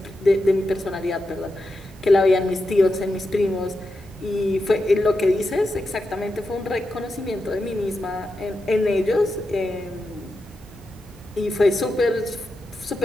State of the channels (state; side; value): normal; both; correlation 0.88